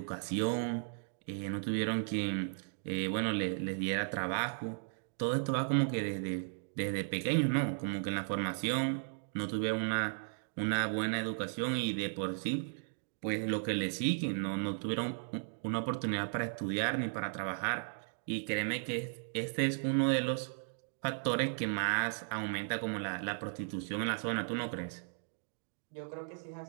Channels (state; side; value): silent; left; digital silence